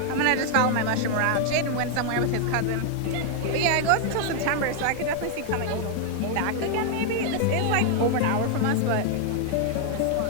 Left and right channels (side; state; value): both; different; correlation 0.00